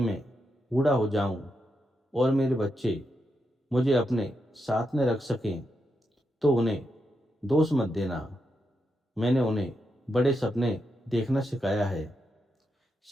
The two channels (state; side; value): normal; both; correlation 0.84